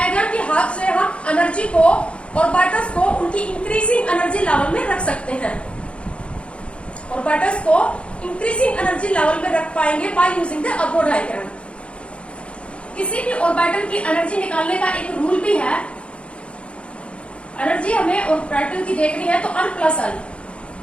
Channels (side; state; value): right; late; 0.059 ms